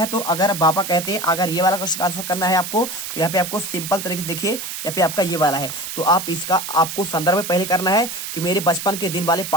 तो अगर बाबा कहते हैं, अगर ये वाला क्वेश्चन आंसर करना है आपको तो यहाँ पे आपको सिंपल तरीके से देखिए यहाँ पे आपका ये वाला है। तो आप इसका आपको संदर्भ पहले करना है कि मेरे बचपन के दिन वाले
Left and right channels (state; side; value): noise; right; hiss, 7 dB below the sound